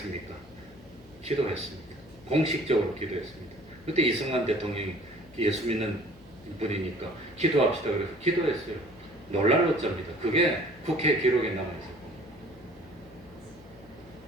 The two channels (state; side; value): noise; left; hum, 23 dB below the sound